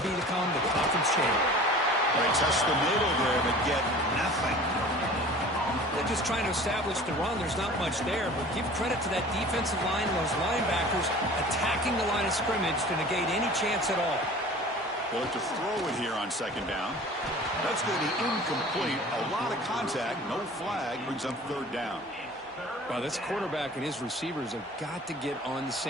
to become the conference champion. They touch the middle there, but get nothing. They're just trying to establish the run. There's not much there, but give credit to that defensive line and those linebackers attacking the line of scrimmage to negate any chance at all. They'll look to throw it here on second down. That's going to be incomplete. A lot of contact, no flag, brings up third down. Well, this quarterback and his receivers have got to get on the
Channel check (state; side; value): normal; both; correlation 0.43